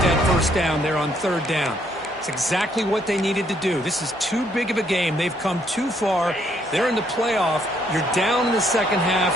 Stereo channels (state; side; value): normal; both; correlation 0.69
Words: that first down there on 3rd down. It's exactly what they needed to do. This is too big of a game. They've come too far. They're in the playoff. You're down in the 2nd half.